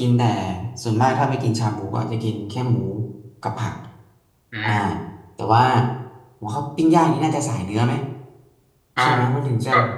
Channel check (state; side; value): identical; both; correlation 1.00